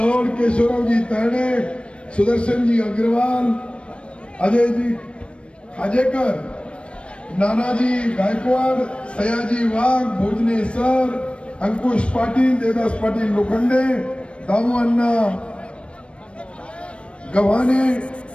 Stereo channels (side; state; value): right; late; 0.059 ms